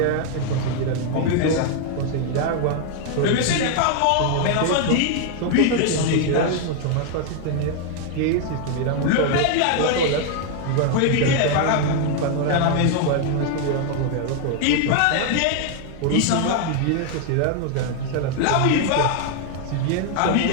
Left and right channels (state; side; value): different; both; correlation 0.00